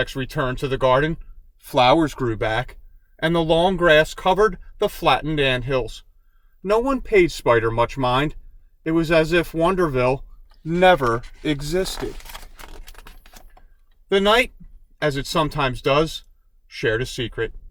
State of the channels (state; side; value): identical; both; correlation 1.00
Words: returned to the garden. Flowers grew back, and the long grass covered the flattened anthills. No one paid Spider much mind. It was as if Wonderville never existed. The night, as it sometimes does, shared a secret.